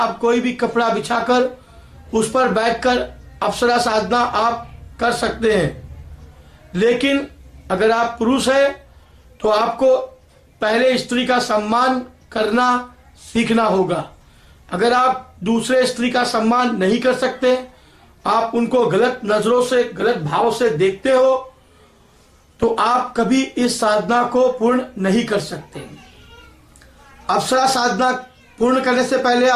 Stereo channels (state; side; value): identical; both; correlation 1.00